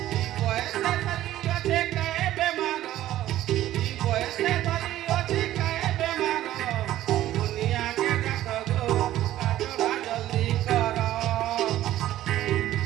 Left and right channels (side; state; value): left; quieter; 13.8 dB